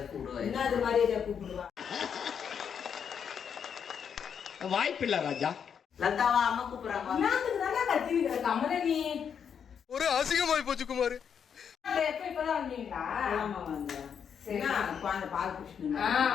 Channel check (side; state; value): right; quieter; 7.5 dB